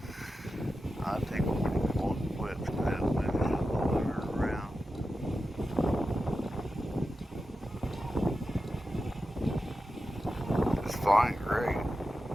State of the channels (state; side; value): normal; both; correlation 0.91